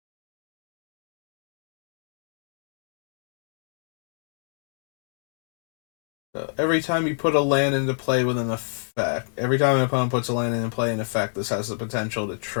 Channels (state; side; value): silent; right; digital silence